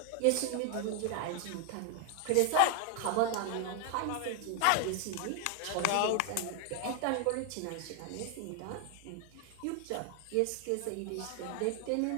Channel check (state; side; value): different; both; correlation 0.01